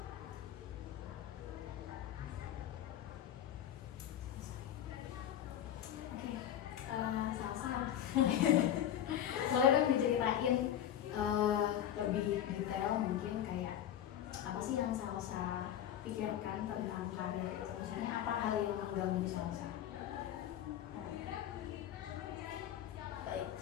Oke, Salsa. Boleh dong diceritain lebih detail mungkin kayak apa sih yang Salsa pikirkan tentang karir itu? Maksudnya apa hal yang mengganggu Salsa? Baik,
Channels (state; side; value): quieter; right; 10.6 dB